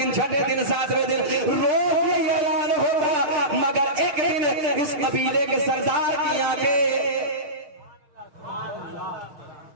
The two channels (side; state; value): left; late; 6.7 ms